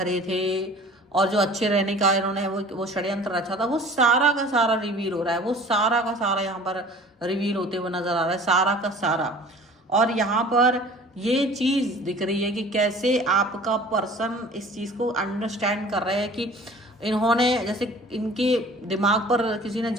थे, और जो अच्छे रहने का इन्होंने वो षड्यंत्र रचा था, वो सारा का सारा रिवील हो रहा है, वो सारा का सारा यहाँ पर रिवील होते हुए नजर आ रहा है, सारा का सारा। और यहाँ पर ये चीज दिख रही है कि कैसे आपका पर्सन इस चीज को अंडरस्टैंड कर रहे हैं कि इन्होंने जैसे इनके दिमाग पर किसी ने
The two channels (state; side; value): normal; both; correlation 0.46